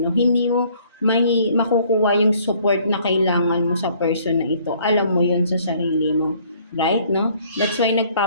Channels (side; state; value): both; inverted; correlation -0.60